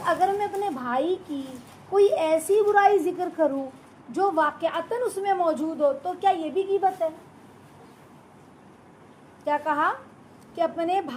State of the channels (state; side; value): identical; both; correlation 1.00